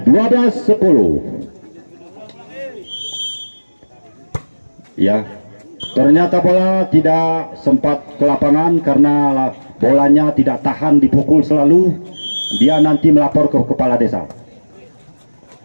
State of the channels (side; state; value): both; inverted; correlation -1.00